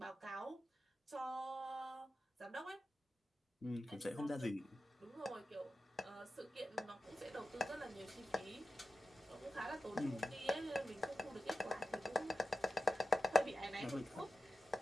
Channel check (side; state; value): both; normal; correlation 0.90